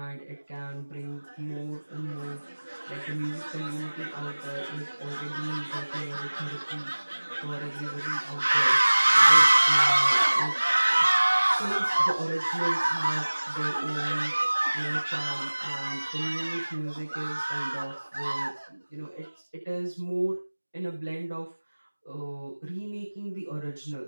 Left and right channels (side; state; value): both; inverted; correlation -1.00